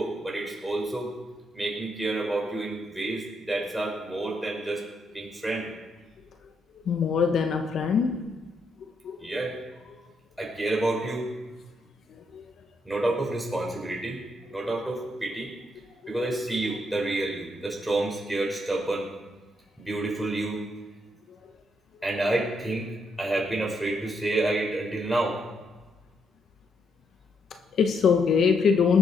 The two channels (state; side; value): normal; both; correlation 0.77